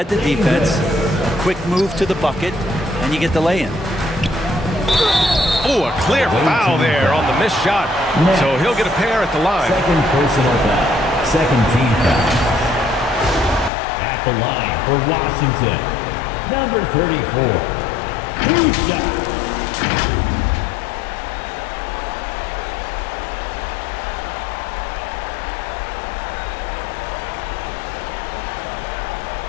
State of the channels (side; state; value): right; drops out; at 13.7 s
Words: the defense, a quick move to the bucket, and you get the lay-in. Oh, a clear foul there on the missed shot. So he'll get a pair at the line. Second personal foul. Second team foul. At the line for Washington, number 34. 2 shots.